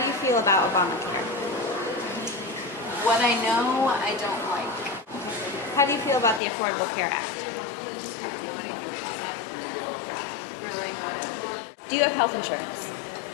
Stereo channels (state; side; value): drops out; right; at 6.4 s